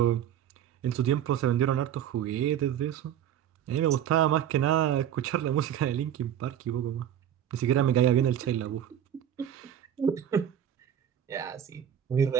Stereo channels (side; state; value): left; quieter; 10.1 dB